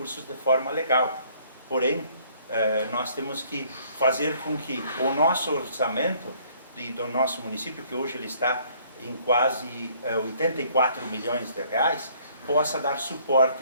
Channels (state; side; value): inverted; both; correlation -0.61